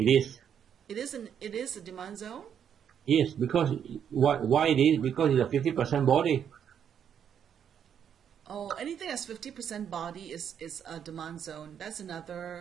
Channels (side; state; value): left; quieter; 8.5 dB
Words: is. It is a demand zone? Yes, because why it is? Because it's a 50% body. Oh, anything that's 50% body is a demand zone. That's